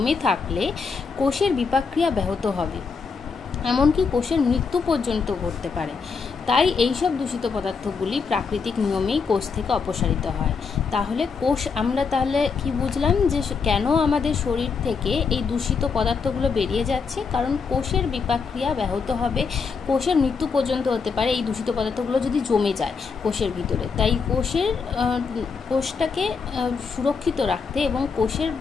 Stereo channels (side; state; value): right; quieter; 5.3 dB